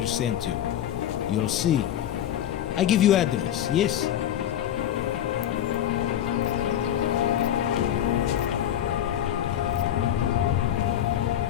sent you. You'll see. I give you address, yes?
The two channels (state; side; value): quieter; right; 10.8 dB